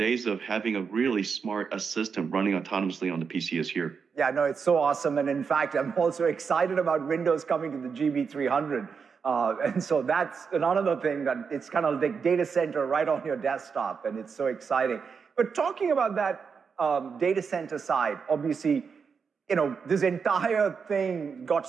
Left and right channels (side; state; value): left; quieter; 5.8 dB